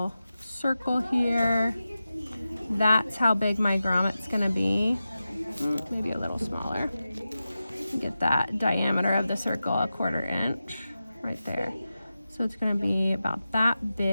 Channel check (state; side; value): inverted; both; correlation -0.93